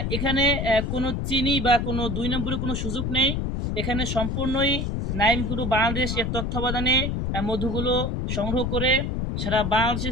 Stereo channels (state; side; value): noise; left; rumble, 1 dB below the sound